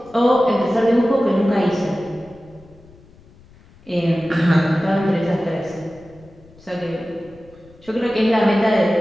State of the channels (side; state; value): left; noise; rumble, 26 dB below the sound